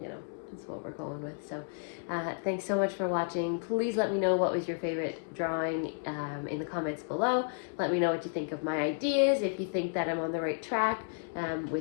you know, that's what we're going with. So thanks so much for watching. Please let me know what was your favorite drawing in the comments below. Let me know what you think of my ideas, if you think that I'm on the right track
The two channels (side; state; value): right; silent; digital silence